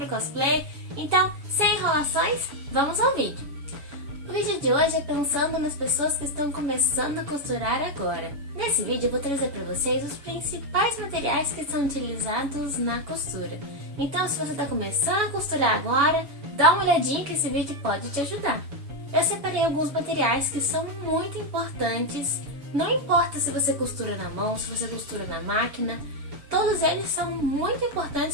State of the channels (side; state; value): left; late; 7.1 ms